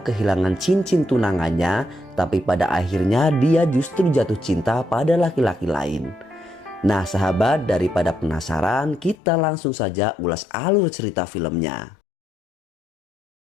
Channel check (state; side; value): drops out; right; at 9.2 s